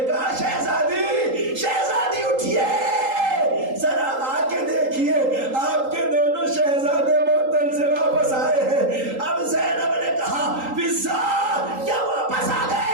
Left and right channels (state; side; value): late; left; 3.8 ms